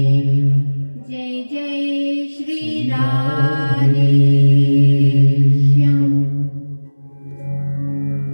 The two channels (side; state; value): both; inverted; correlation -1.00